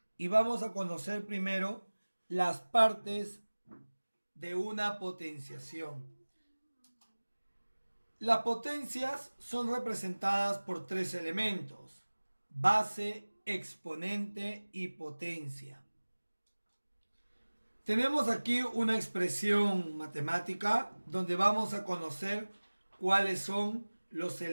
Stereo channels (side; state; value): both; inverted; correlation -1.00